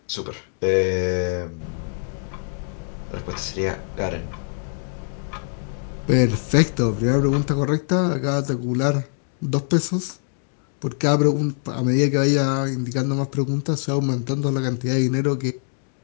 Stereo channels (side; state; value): right; silent; digital silence